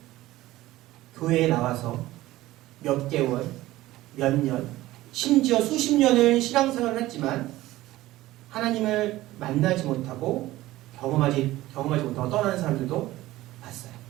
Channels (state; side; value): quieter; left; 16.7 dB